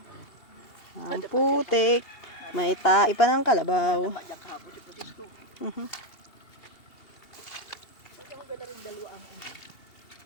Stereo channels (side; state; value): right; late; 2.8 ms